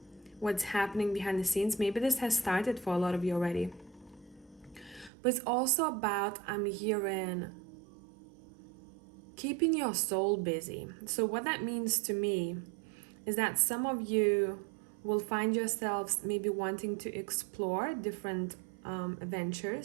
what's happening behind the scenes. Maybe this has started for a lot of you already. But it's also about, I'm hearing, keeping your soul busy. So what that means to me is that some of you will find yourselves maybe wanting to explore different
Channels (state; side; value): drops out; left; at 5.1 s